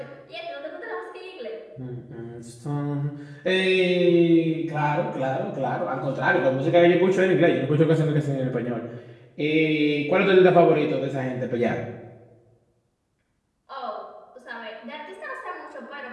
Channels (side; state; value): both; identical; correlation 1.00